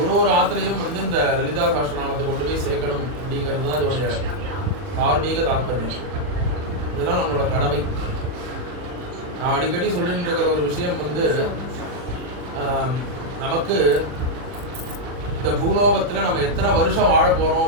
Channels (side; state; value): left; late; 40 ms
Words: ஒரு ஆத்துலையும் வந்து இந்த லலிதா சகஸ்ரநாமத்தை கொண்டு போய் சேர்க்கணும் அப்படிங்கிறது தான் இதோடைய தார்மீக தாற்பயம். இதெல்லாம் நம்மளோட கடமை. நான் அடிக்கடி சொல்லிட்டு இருக்கிற ஒரு விஷயம் வந்து நமக்கு இந்த பூலோகத்தில் நம்ம எத்தனை வருஷம் வாழ போகிறோம்